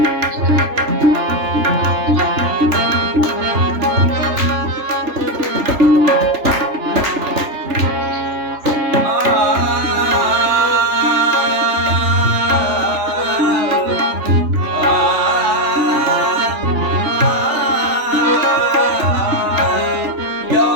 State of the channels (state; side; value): late; left; 3.4 ms